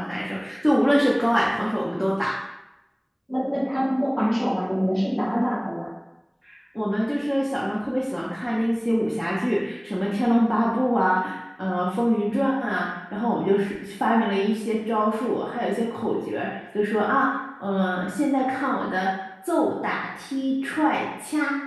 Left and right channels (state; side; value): identical; both; correlation 1.00